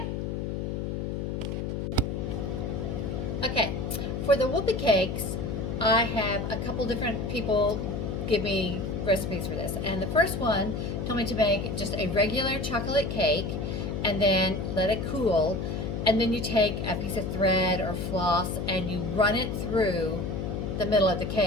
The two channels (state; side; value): noise; left; hum, 3 dB below the sound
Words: Okay, for the Whoopee Cakes, I have a couple different people give me recipes for this. And the first one told me to make just a regular chocolate cake and then let it cool. And then you take a piece of thread or floss and you run it through the middle of the